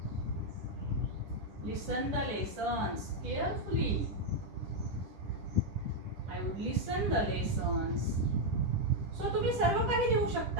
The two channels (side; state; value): left; late; 10 ms